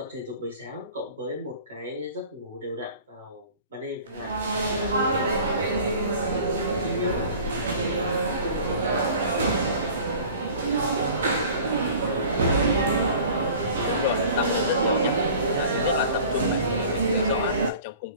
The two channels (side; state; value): both; inverted; correlation -0.45